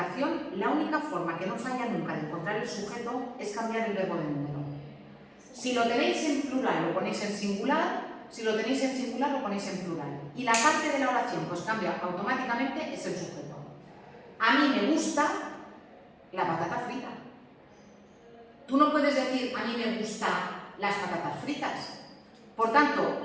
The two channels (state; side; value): identical; both; correlation 1.00